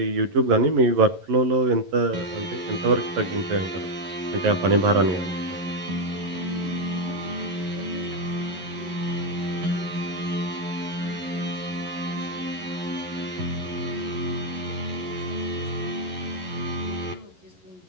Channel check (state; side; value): late; left; 11 ms